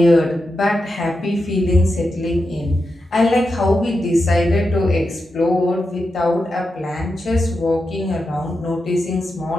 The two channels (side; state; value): both; normal; correlation 0.88